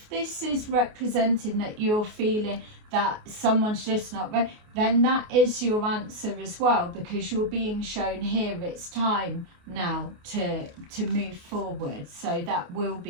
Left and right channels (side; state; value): left; late; 28 ms